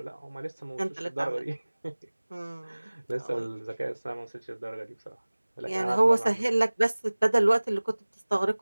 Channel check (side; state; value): both; inverted; correlation -1.00